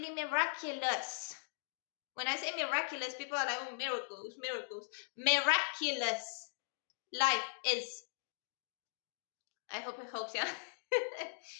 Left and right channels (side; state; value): right; silent; digital silence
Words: miraculous. When I say miraculous, people are like, oh, miracles. Miraculous life is. I hope it helps you.